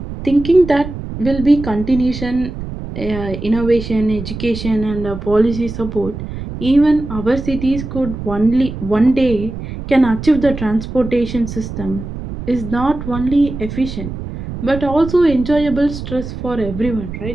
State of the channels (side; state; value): right; noise; rumble, 9 dB below the sound